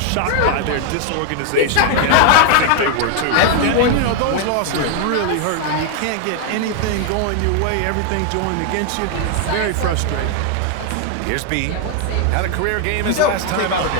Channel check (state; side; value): different; both; correlation 0.00